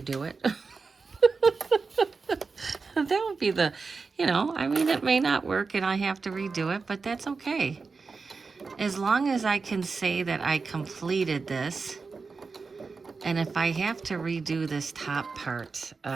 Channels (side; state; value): left; quieter; 4.6 dB